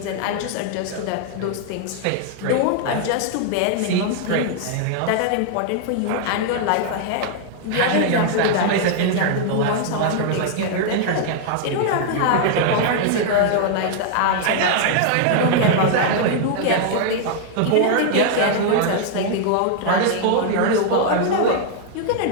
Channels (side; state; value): both; different; correlation 0.00